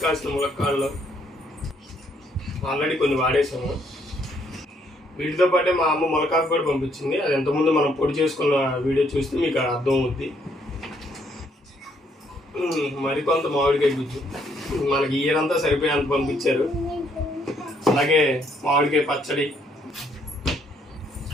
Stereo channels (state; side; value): normal; both; correlation 0.70